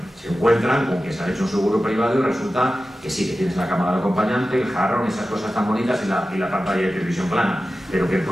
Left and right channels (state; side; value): normal; both; correlation 0.94